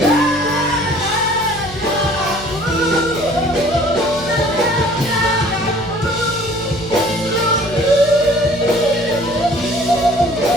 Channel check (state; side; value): noise; left; hum, 16 dB below the sound